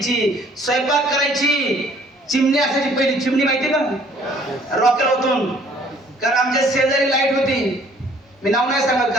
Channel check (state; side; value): normal; both; correlation 0.58